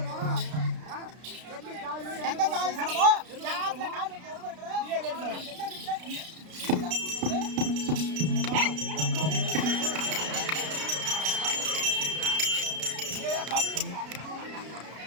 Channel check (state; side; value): late; left; 33 ms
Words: எந்த ஜாதி சனமோ யாத்துல கால் வைக்க உரிமை